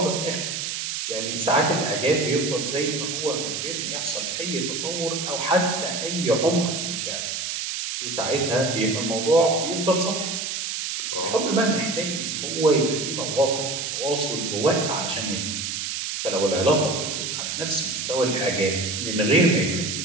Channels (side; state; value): right; noise; hiss, 3 dB below the sound